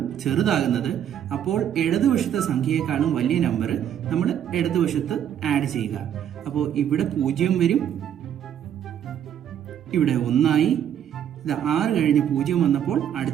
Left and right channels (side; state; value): left; quieter; 9.7 dB